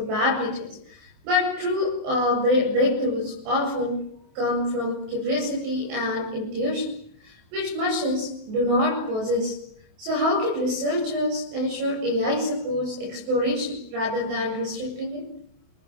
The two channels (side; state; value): left; late; 28 ms